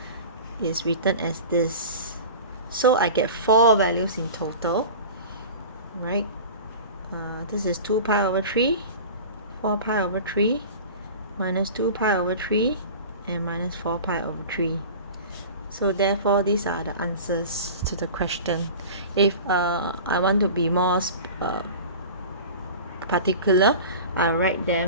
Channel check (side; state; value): both; inverted; correlation -0.36